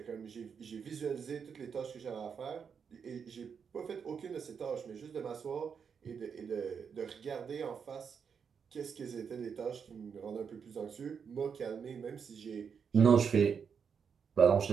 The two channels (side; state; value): left; quieter; 6.6 dB